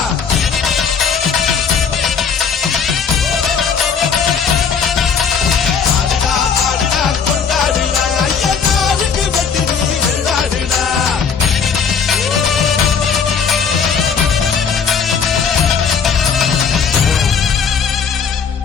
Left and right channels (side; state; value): right; quieter; 6.4 dB